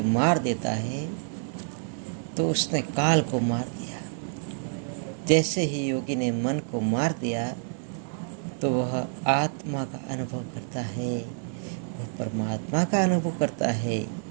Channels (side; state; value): left; silent; digital silence